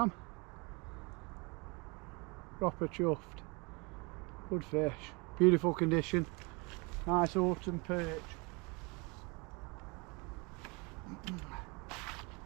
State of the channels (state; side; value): quieter; left; 28.9 dB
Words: am. Proper chuffed. Good fish. Beautiful condition. Nice autumn perch.